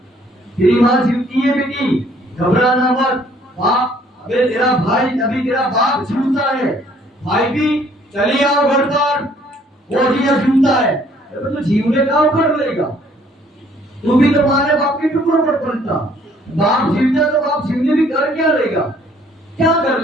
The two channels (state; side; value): normal; both; correlation 0.61